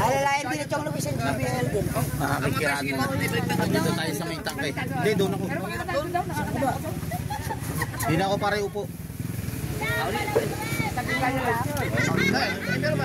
din ito ang lumisan sa BL din. Nakakikiraan mo. Dito tayo sa may tangkay. Hindi, doon ako. Hindi na ako pare upo.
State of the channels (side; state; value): both; identical; correlation 1.00